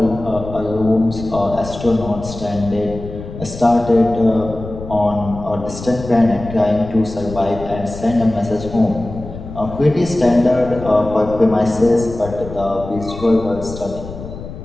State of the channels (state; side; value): noise; left; rumble, 12 dB below the sound